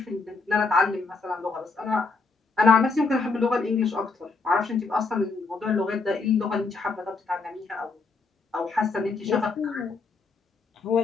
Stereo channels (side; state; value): right; quieter; 4.0 dB